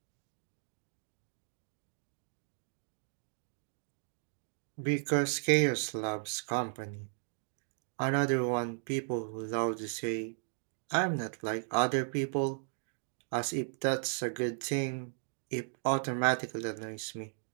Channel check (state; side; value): silent; left; digital silence